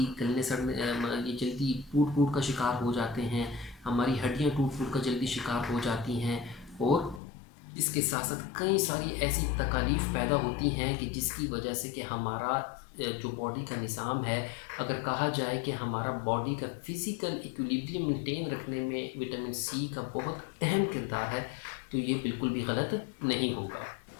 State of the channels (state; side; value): drops out; right; at 7.2 s